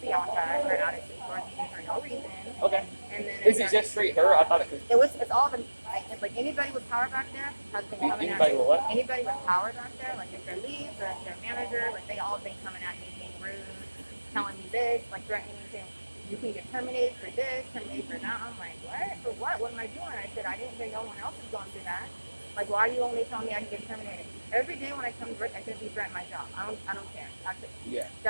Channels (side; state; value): both; inverted; correlation -1.00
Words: Bianca, her attitude towards me for no reason. Okay. And then Is it just straight her? I thought it was. it's all been, like anybody with power back there has been coming at Anybody me. with what? Anybody with power back there, like if they're leads or if they're manager, like they all been coming at me being rude, telling me this, like threatening me saying, you can get terminated for this, terminated for that. I'm like, what? For what? What am I doing? I said, I didn't hear no one else is going through that. Like, why are you only telling me I can get terminated? Every day when I come to work, I shouldn't be threatening my job. I don't care. Yeah.